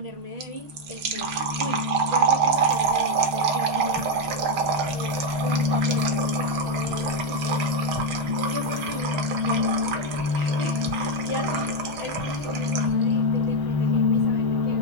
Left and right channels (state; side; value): late; left; 6.3 ms